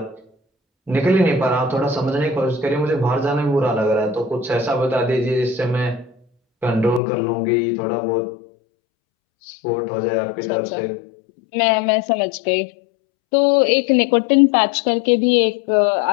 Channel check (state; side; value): drops out; right; at 7.0 s